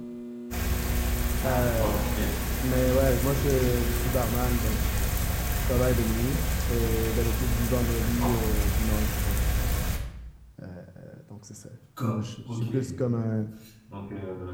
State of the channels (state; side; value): identical; both; correlation 1.00